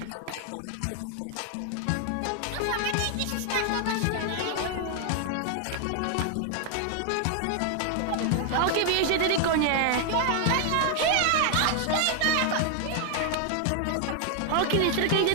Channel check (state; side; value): different; both; correlation 0.00